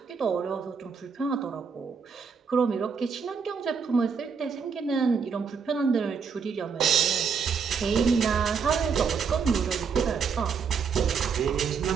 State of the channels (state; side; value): quieter; left; 5.9 dB